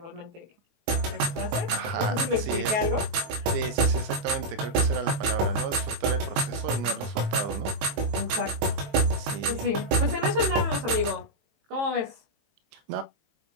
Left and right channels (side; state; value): left; late; 19 ms